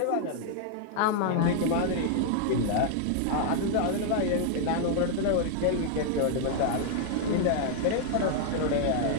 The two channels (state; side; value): different; both; correlation 0.00